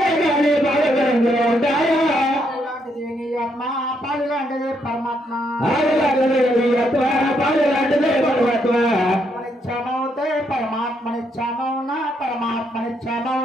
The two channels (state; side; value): normal; both; correlation 0.75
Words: అమ్మ పాలు లాంటిది పరమాత్మ నిత్యమవుతే పరమాత్మ నిత్యమౌన పరమాత్మ